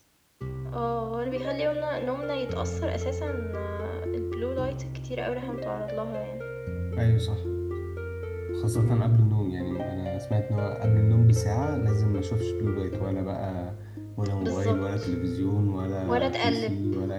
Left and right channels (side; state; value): both; identical; correlation 1.00